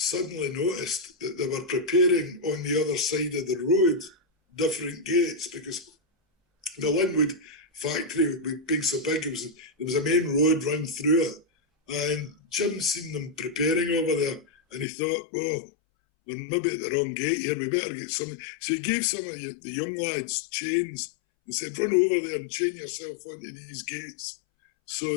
noticed that they were preparing on the other side of the road different gates, because the Linwood factory being so big, there was a main road run through it, and Jim seen them preparing over there, and he thought, well, we're maybe at the wrong gate here, we better get something. So he gave some of the young lads chains and said, run over there and chain yourself onto these gates so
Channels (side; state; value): right; drops out; at 14.9 s